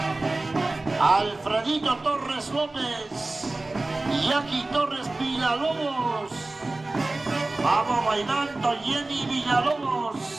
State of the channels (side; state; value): left; quieter; 3.0 dB